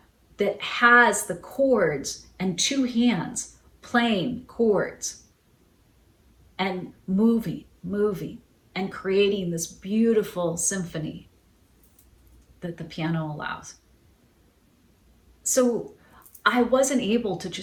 that has the chords and two hands playing chords and moving, and creating this beautiful symphony that the piano allows. So I wasn't able to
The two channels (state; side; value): identical; both; correlation 1.00